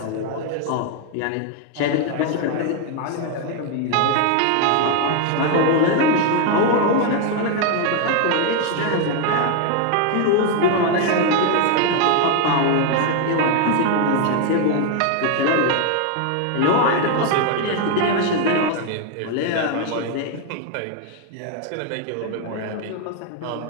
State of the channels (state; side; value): different; both; correlation 0.01